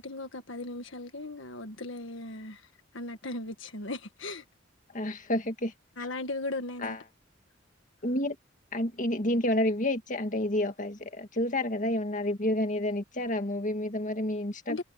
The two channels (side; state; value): both; normal; correlation 0.37